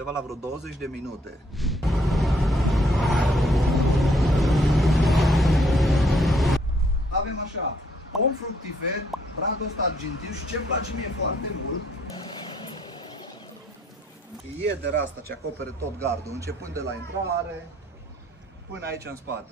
la vreo 20 de minute. Avem așa, pom fructifer, bradul ăsta argintiu și ce-mi place mie foarte mult, iedera asta ce acopere tot gardul, începând de la intrare până aici în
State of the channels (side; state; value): both; normal; correlation 0.68